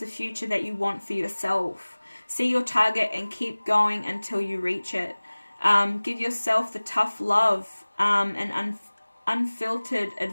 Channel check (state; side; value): inverted; both; correlation -1.00